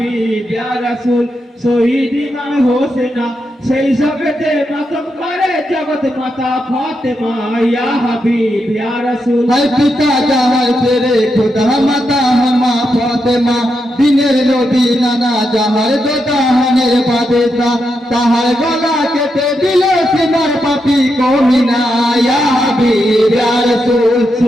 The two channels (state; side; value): normal; both; correlation 0.84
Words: ইয়া রাসূল শহীদ ইমাম হোসেনা সেই জগতে মাতম করে জগত মাতা ফাতেমা ইয়া হাবিব ইয়া রাসূল है पिता जहाँ तेरे खुदा माता हमा फातिमा दिनेर नबी नाना जहाँ दो दाहनेर बादेसा ताहार गला केटे दिले सिनार पापी को मिना या हबीब या रसूल